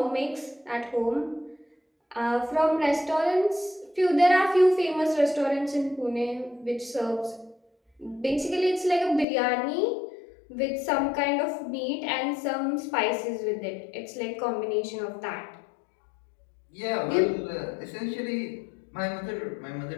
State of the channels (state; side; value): drops out; right; at 9.2 s